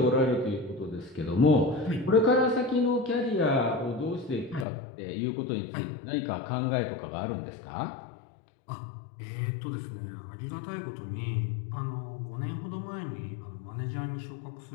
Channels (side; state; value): right; drops out; at 4.7 s